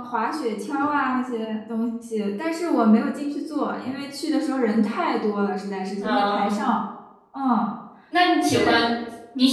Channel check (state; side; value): identical; both; correlation 1.00